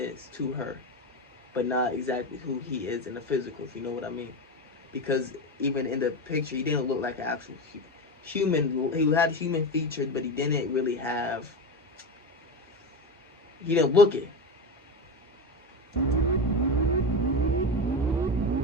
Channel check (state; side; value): normal; both; correlation 0.20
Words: to her. But not exactly who he is in the physical, if you know what I mean. Because even in the picture, he didn't look like an actual human. He had human features, but he didn't really have. He didn't look it.